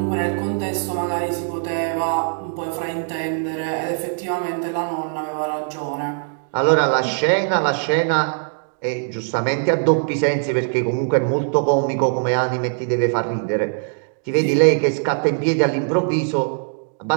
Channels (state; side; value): silent; left; digital silence